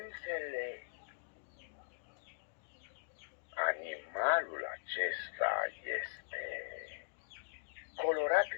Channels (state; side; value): silent; right; digital silence